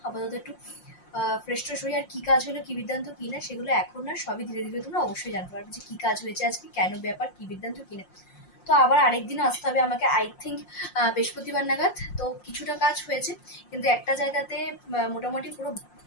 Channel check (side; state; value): right; late; 5.6 ms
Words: আপাতত একটু ফ্রেশ ট্রেশ হয়ে, আর কি কাজ হলো কি বৃত্তান্ত কি না সেগুলো এখন না, সবই ধীরে ধীরে তোমরা অবশ্যই জানতে পারবে যে কি কাজ হয়েছে আজকে, কেন ব্যাপার, কি বৃত্তান্ত কি না। তো আবার আরেকদিনও আসতে হবে আমাকে, আই থিঙ্ক বৃহস্পতিবার নাগাদ। তো কিছুটা কাজ হয়েছে, কিন্তু একটা জায়গাতে মোটামুটি পুরো